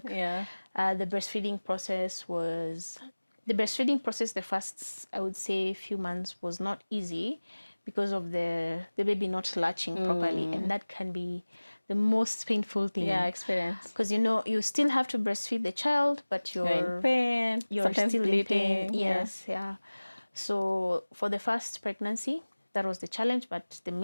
Yeah. The breastfeeding process, the first, I would say, few months was not easy because of the baby not latching properly. And that can be the most painful thing. Yeah, experience. Because, you still have to breastfeed the child, but You're in pain. you're Sometimes still bleeding. in pain. Yes, yeah. So for the first pregnancy, that was the challenge, but the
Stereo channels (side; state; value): both; inverted; correlation -1.00